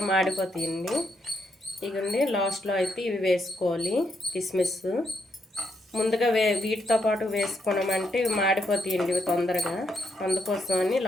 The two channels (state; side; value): normal; both; correlation 0.77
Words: మాడిపోతాయండి. ఇవ్వండి లాస్ట్లో అయితే ఇవి వేసుకోవాలి. కిస్మిస్ ముందుగా వీటితో పాటు వేసుకున్నామంటే ఇవి మాడిపోతాయండి ఇవి తొందరగా, అందుకోసమని